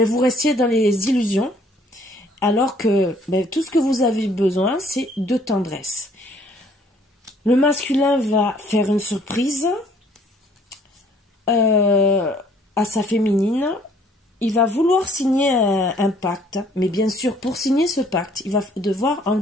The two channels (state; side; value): normal; both; correlation 0.60